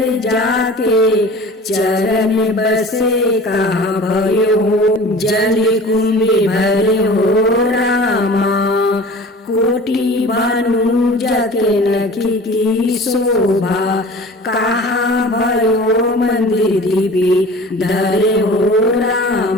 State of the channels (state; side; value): normal; both; correlation 0.41